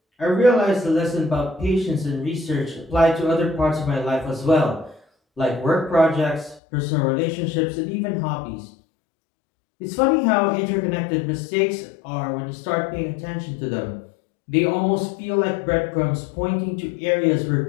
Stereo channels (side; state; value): right; drops out; at 6.6 s